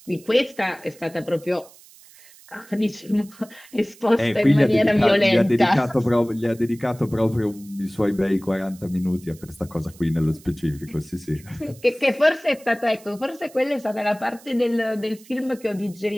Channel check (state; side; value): noise; right; hiss, 24 dB below the sound